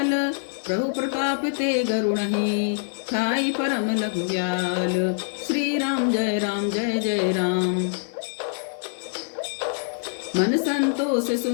प्रभु प्रताप ते गरुणहि, ठाई परम लघु व्याल। श्री राम जय जय राम। मन संतोष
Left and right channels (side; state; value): right; silent; 58 dB below the other